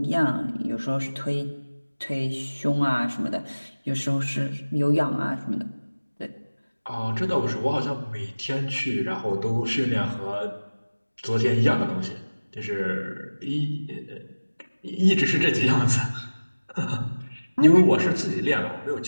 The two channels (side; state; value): both; inverted; correlation -1.00